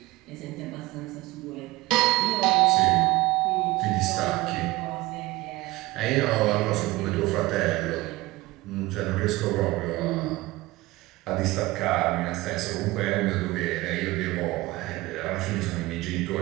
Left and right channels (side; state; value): left; quieter; 19.8 dB